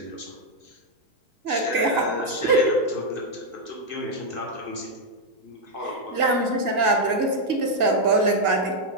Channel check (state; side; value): late; left; 1.7 ms